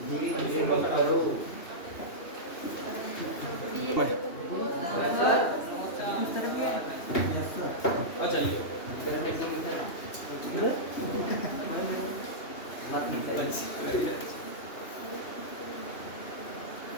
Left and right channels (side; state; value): right; late; 2.8 ms